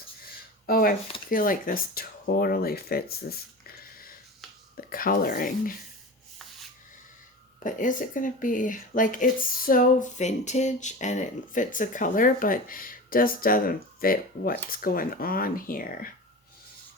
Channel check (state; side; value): normal; both; correlation 0.31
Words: Oh, I feel like this totally fits the coloring. But is it going to be, like, it's so vintage and it fits the color, but just doesn't fit what's going on here.